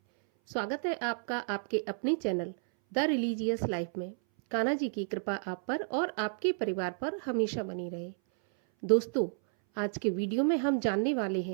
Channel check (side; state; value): left; silent; 57 dB below the other